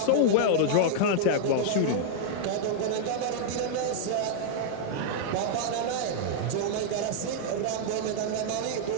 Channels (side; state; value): both; different; correlation -0.01